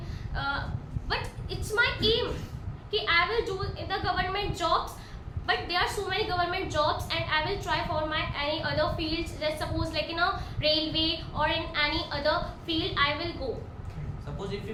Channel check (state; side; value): identical; both; correlation 1.00